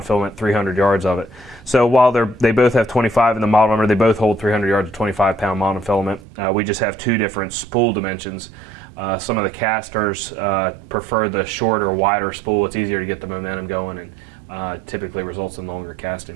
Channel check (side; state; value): left; drops out; at 6.2 s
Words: 300 yards of it. So while they both have 25 in the model number, they both hold 300 yards of 25-pound monofilament. We just have two different spool dimensions. Some of the casters prefer the shorter, wider spool. It's easier to get the momentum going and typically results in longer